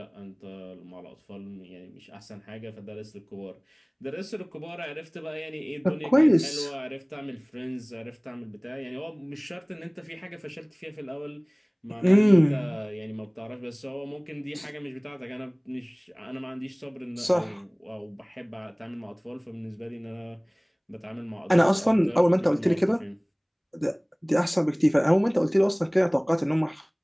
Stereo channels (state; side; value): identical; both; correlation 1.00